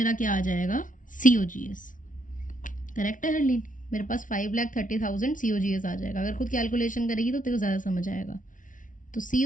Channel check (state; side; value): late; right; 0.38 ms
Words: क्या आ जाएगा, COGS। करेक्ट है हरलीन, मेरे पास 5,30,000 COGS आ जाएगा। अगर खुद कैलकुलेशन करेगी तो तेरे को ज़्यादा समझ आएगा। तो